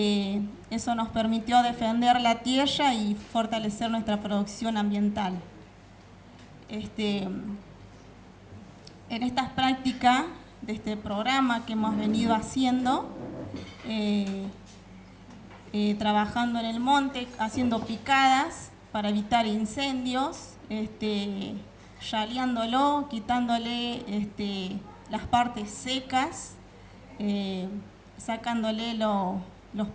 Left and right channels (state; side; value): identical; both; correlation 1.00